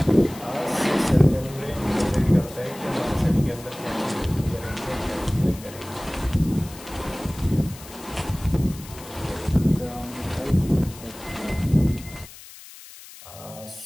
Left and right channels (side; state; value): left; noise; hiss, 17 dB below the sound